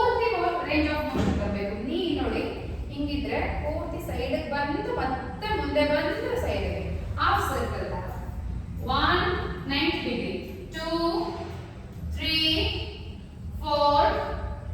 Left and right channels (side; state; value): both; identical; correlation 1.00